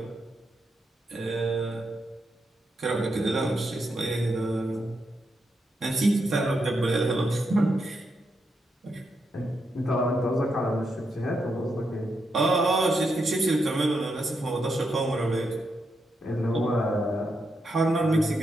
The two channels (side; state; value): both; normal; correlation 0.83